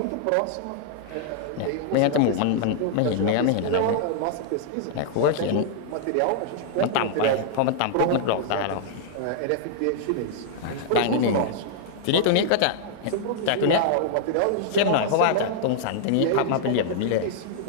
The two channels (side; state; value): both; different; correlation -0.01